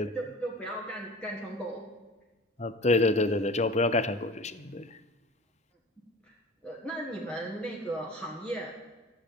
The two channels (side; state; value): both; normal; correlation 0.39